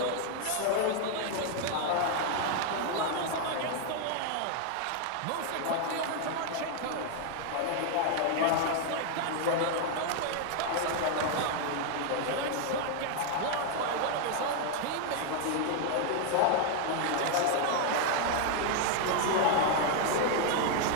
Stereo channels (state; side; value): different; both; correlation 0.00